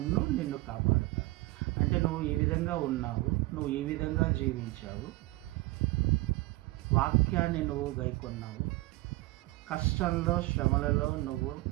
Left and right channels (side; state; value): left; quieter; 20.5 dB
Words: కాపాడుతాను అంటే నువ్వు ఈ విధంగా ఉన్నావు, నువ్వు ఈ విధంగా జీవించావు, వాక్యాన్ని నువ్వు గైకొన్నావు, కష్టంలో, శ్రమలలో నువ్వు